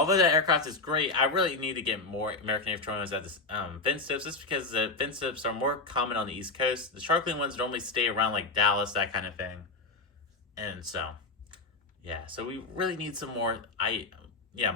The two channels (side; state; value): right; quieter; 3.5 dB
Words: that aircraft is great, I really need to get more American A321s at the fin tips, just because the fin tips are more common on the East Coast. The Sharklet ones normally stay around like Dallas, that kind of thing. And so yeah, so we really need some more IE